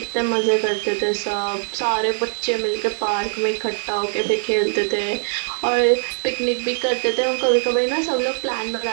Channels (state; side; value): silent; left; 59 dB below the other